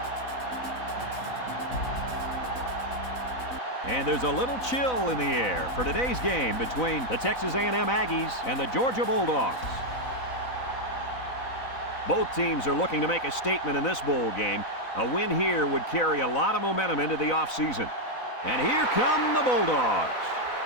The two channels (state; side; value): late; right; 4.0 ms